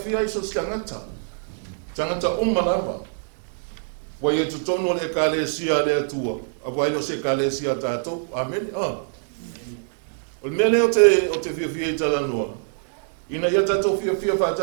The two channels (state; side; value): silent; left; digital silence